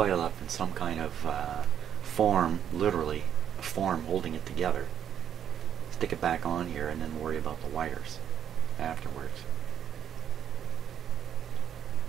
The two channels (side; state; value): left; quieter; 9.2 dB